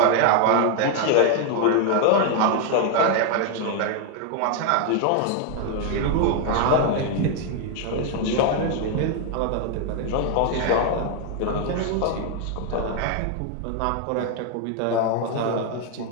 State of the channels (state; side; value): different; both; correlation 0.00